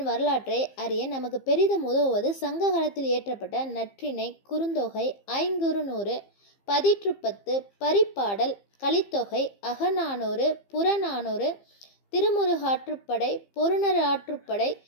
வரலாற்றை அறிய நமக்கு பெரிதும் உதவுவது சங்க காலத்தில் இயற்றப்பட்ட நற்றிணை, குறுந்தொகை, ஐங்குறுநூறு, பதிற்றுப்பத்து, பரிபாடல், கலித்தொகை, அகநானூறு, புறநானூறு, திருமுருகாற்றுப்படை, பொருணர் ஆற்றுப்படை,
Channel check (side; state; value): right; late; 15 ms